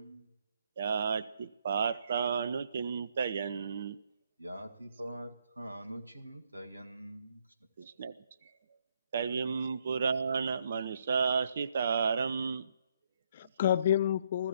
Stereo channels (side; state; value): both; inverted; correlation -0.71